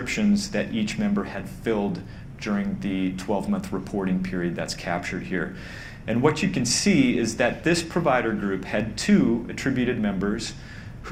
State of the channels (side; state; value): both; identical; correlation 1.00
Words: that each member had filled during the 12-month reporting period that's captured here. And what you can see is that this provider group had 2 attributed members